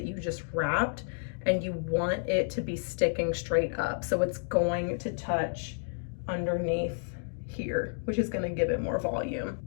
you just wrapped, and you want it to be sticking straight up. So it's going to touch underneath here, which is gonna give it more volume.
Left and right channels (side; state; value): right; silent; digital silence